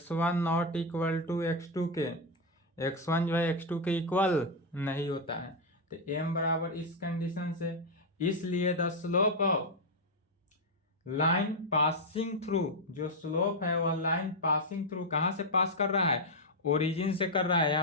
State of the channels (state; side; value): normal; both; correlation 0.02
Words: not equal to x2 के, x1 जो है x2 के इक्वल नहीं होता है। तो m बराबर इस कंडीशन से, इसलिए the slope of line passing through, जो स्लोप है वह लाइन पासिंग थ्रू, कहाँ से पास कर रहा है, ओरिजिन से कर रहा है।